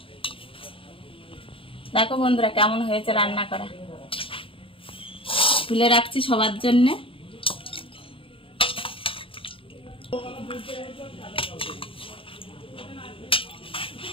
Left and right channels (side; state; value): right; late; 0.26 ms